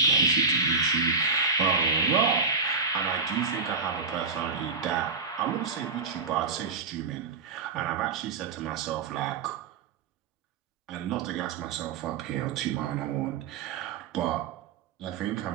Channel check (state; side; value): quieter; left; 4.7 dB